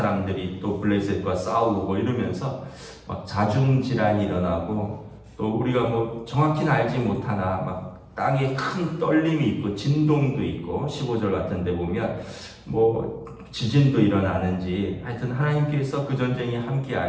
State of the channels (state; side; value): identical; both; correlation 1.00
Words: 또 블레셋과 싸우고 이러면서 막 자중질환이 일어나고 또 우리가 뭐 정확히는 알지 못하나 막 땅에 큰 떨림이 있고 진동도 있고 15절 같은 데 보면 뭐 지진도 일어나는지 하여튼 하나님께서 그 전쟁에 함께